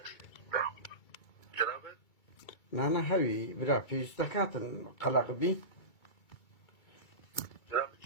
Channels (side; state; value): right; late; 2.3 ms